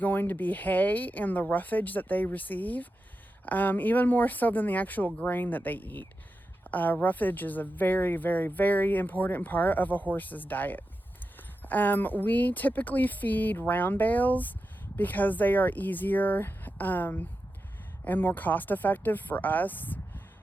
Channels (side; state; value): both; normal; correlation 0.89